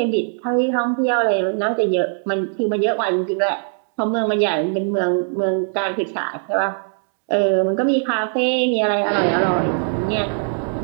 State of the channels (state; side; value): silent; left; 58 dB below the other